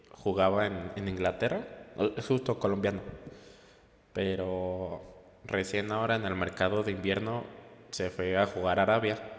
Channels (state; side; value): identical; both; correlation 1.00